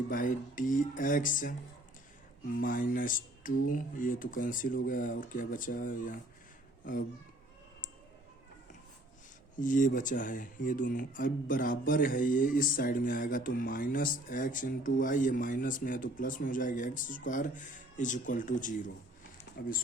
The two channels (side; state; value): both; normal; correlation 0.56